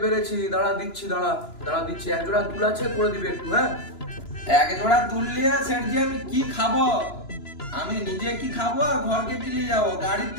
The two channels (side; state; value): right; late; 2.9 ms